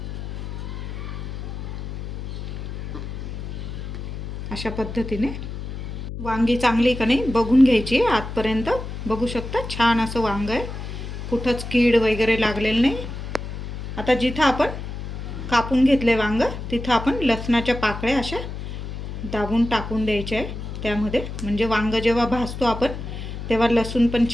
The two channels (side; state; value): left; noise; hum, 7 dB below the sound